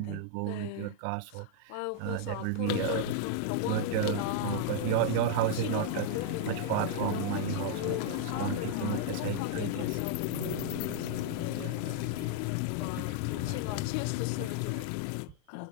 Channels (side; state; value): both; different; correlation -0.01